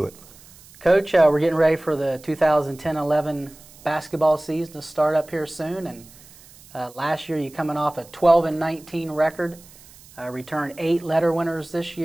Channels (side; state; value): right; noise; hiss, 23 dB below the sound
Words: it. Coach, we're getting ready for the 2010-11 basketball season to start up here soon, and last year you coming off a 12-19 record, returned 8 letter winners this